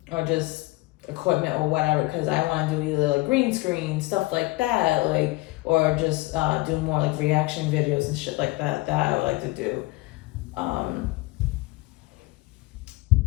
or just equipment or whatever. Because I want to do either, like, green screen stuff like that, like, or just do more, like, reaction videos and shit like that. That I would like to do.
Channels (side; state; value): right; quieter; 21.8 dB